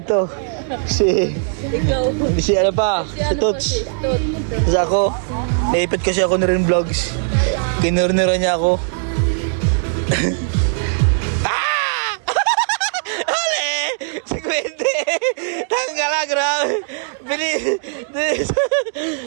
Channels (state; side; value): silent; left; digital silence